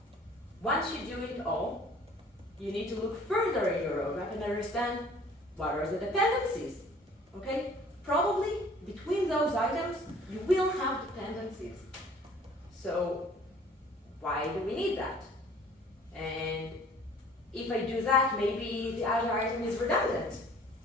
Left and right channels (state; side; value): normal; both; correlation 0.52